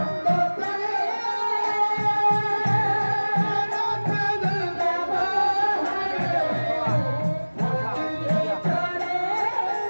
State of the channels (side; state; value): both; inverted; correlation -1.00